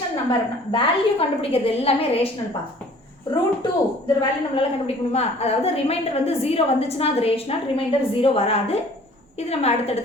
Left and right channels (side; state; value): both; normal; correlation 0.52